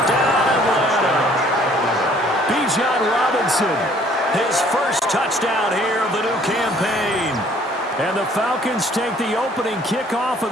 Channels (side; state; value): both; normal; correlation 0.58